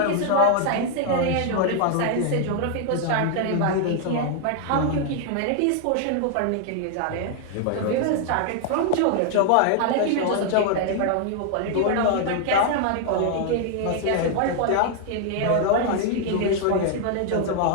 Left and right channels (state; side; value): different; both; correlation 0.00